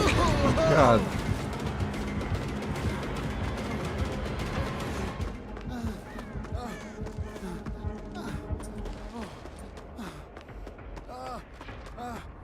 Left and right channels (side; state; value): both; identical; correlation 1.00